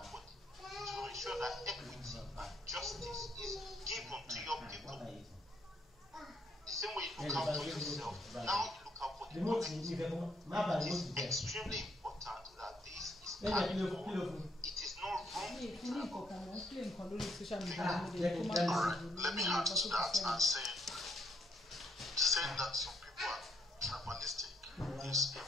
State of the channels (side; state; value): both; normal; correlation 0.71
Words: for it to ensure that equity and justice is given to your people. The same way you look out for yourself, now you look out for the community. It is extremely important that this is carried on. It is not wrong to be tribal. Alright, let me add to that and saying that some people are tribalistic is